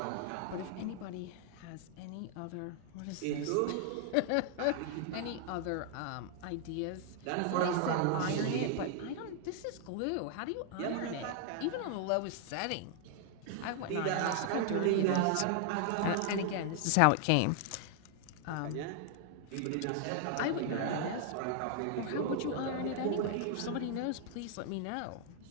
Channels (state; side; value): different; both; correlation 0.00